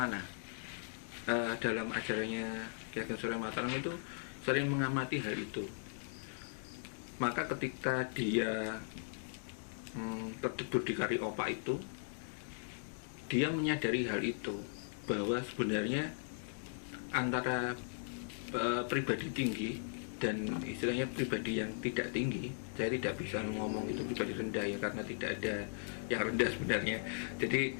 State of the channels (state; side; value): silent; right; digital silence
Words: Dalam ajarannya Ki Ageng Surya Mataram itu sering mengamati hal itu. Maka ketika dia terjebur di kari opak itu, dia menyadari hal itu, bahwa sebenarnya antara pribadi tinggi dan istilahnya pribadi yang tidak tinggi, saya tidak bisa ngomong itu pribadi rendah ya, karena tidak ada yang rendah sebenarnya. Jadi